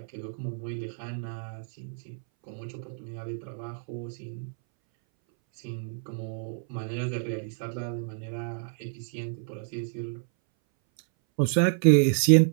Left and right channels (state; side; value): silent; left; 59 dB below the other